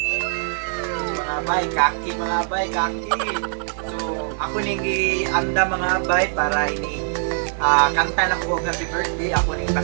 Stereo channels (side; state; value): left; silent; digital silence